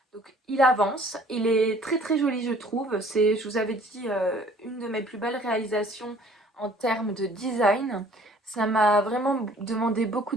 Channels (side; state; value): both; normal; correlation 0.54